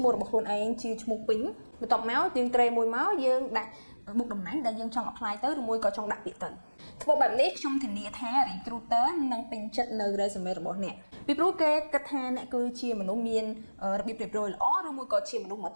មោះរបស់ខ្លួនឯងជាឈ្មោះពេញបន្ទាប់មកយើងត្រេមួយមកយើងដាក់មុខតំណែងដែលយើងចង់ apply ទៅឬមួយក៏ចង់ដាក់ពាក្យទៅធ្វើបែបនេះខ្ញុំធានាថា recruiter នឹងពេញចិត្តនៅ resume របស់អ្នកពីព្រោះគេគិតថាអ្នកគឺជាមនុស្សមានរបៀបរៀបរយល្អឬមួយក៏ជាមនុស្សហ្មត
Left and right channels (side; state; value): both; inverted; correlation -1.00